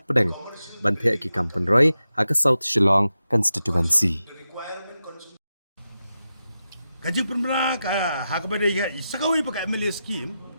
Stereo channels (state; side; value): inverted; both; correlation -0.90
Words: pedeng banthe ki kampen roy ha South Shillong constituency. Kaji penbela hak pada sekawai pakai MLA scheme